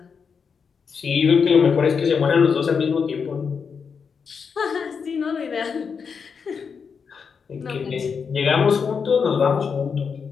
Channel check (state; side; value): quieter; right; 6.0 dB